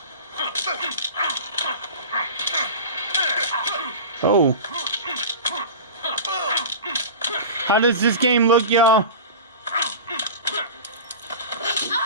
Oh. How does this game look, y'all?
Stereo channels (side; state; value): both; inverted; correlation -0.32